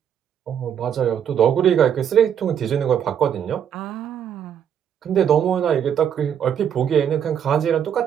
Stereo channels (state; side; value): quieter; left; 8.7 dB